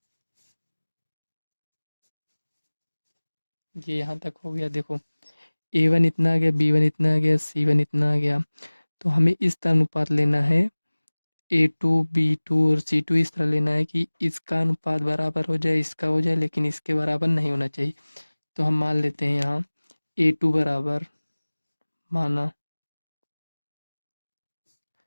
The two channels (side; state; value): both; inverted; correlation -1.00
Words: ये यहाँ तक हो गया। देखो a1 इतना आ गया, b1 इतना आ गया, c1 इतना आ गया। तो हमें इस तरह अनुपात लेना है, a2 b2 और c2 इस तरह लेना है कि इसका अनुपात बराबर हो जाए, इसका हो जाए, लेकिन इसके बराबर नहीं होना चाहिए। तो हम मान लेते हैं यहाँ a2 बराबर, माना